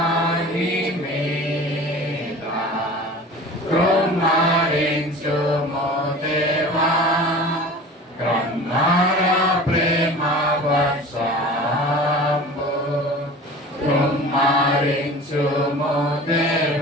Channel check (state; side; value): normal; both; correlation 0.39